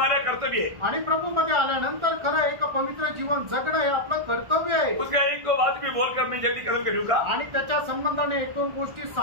कर्तव्य है। आणि प्रभू मध्ये आल्यानंतर खरं एक पवित्र जीवन जगणं हे आपलं कर्तव्य आहे। उसका एक दो बात भी बोलकर मैं जल्दी कदम करूंगा, आणि त्याच्या संबंधाने 1-2 गोष्टी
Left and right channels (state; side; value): late; left; 1.5 ms